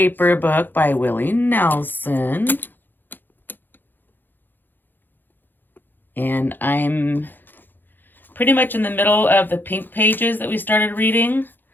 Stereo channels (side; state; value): right; late; 0.092 ms